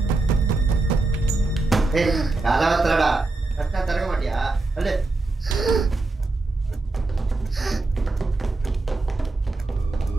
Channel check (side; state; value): left; quieter; 3.3 dB